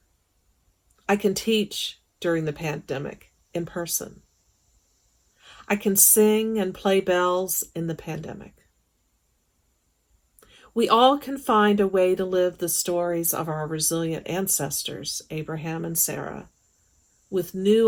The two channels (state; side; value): identical; both; correlation 1.00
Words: I can teach during the pandemic in person. I can sing and play bells in the pandemic. We all can find a way to live the stories of our resilient ancestors, Abraham and Sarah, with